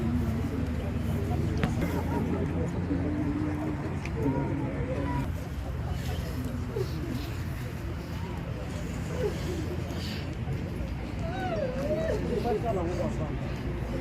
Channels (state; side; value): identical; both; correlation 1.00